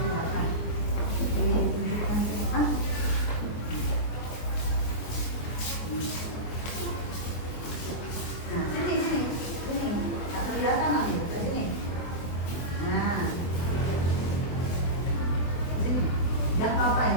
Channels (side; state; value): right; late; 24 ms